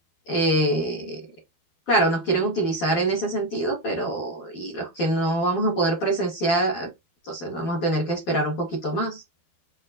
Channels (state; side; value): late; right; 12 ms